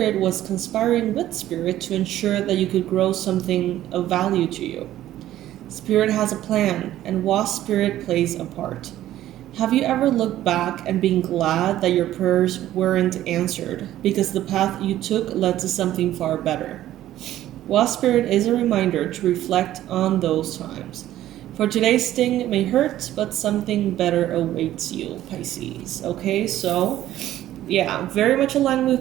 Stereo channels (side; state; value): left; quieter; 13.4 dB